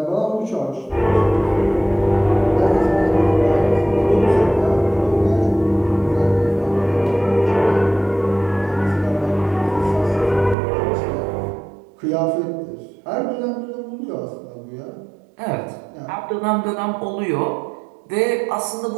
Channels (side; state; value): left; drops out; at 10.6 s